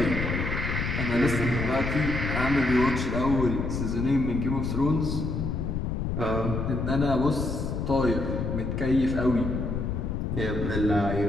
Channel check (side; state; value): left; noise; rumble, 2 dB below the sound